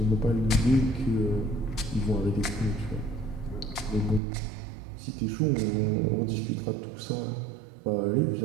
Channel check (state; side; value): drops out; left; at 4.2 s